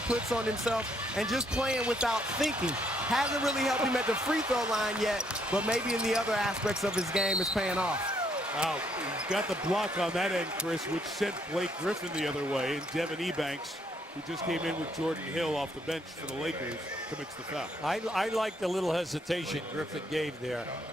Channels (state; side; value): normal; both; correlation 0.71